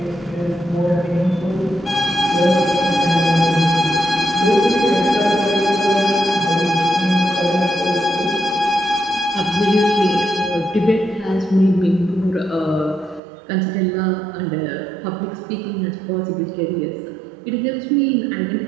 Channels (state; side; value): drops out; left; at 13.2 s